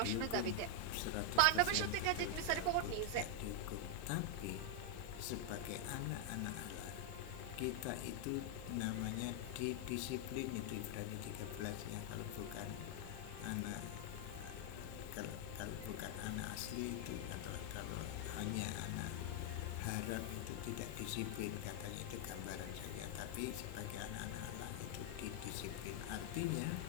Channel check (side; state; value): both; different; correlation 0.00